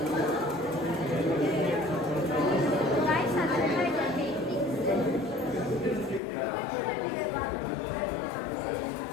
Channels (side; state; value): right; drops out; at 6.2 s